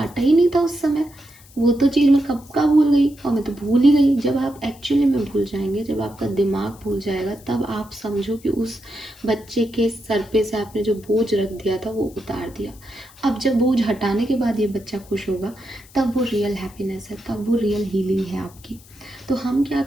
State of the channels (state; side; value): noise; left; hiss, 24 dB below the sound